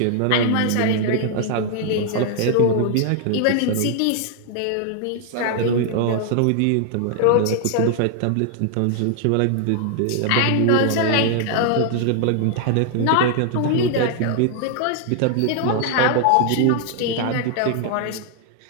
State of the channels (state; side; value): different; both; correlation 0.00